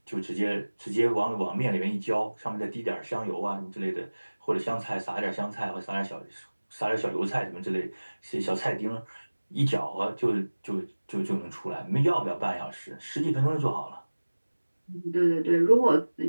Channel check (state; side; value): inverted; both; correlation -1.00